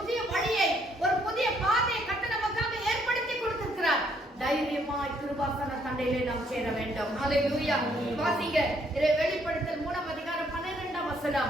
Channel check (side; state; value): both; normal; correlation 0.68